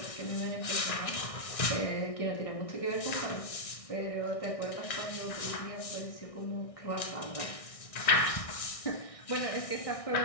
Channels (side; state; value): right; late; 1.6 ms